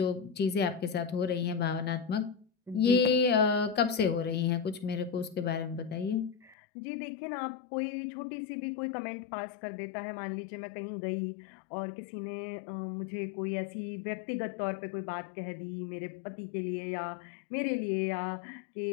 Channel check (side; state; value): right; drops out; at 6.6 s